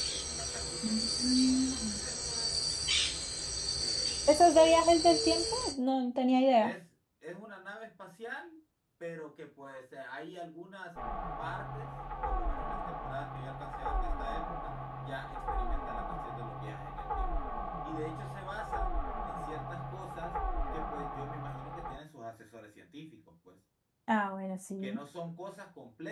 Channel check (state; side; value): identical; both; correlation 1.00